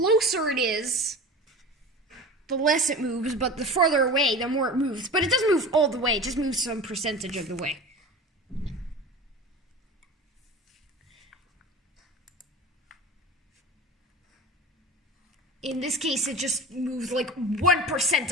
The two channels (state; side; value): normal; both; correlation 0.34